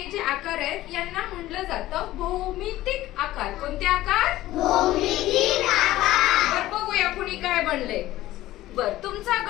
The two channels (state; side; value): quieter; right; 15.7 dB